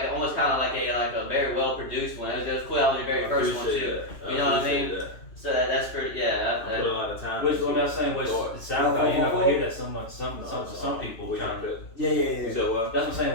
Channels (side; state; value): right; late; 3.0 ms